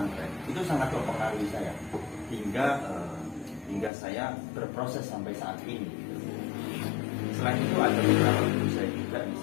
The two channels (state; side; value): drops out; right; at 3.9 s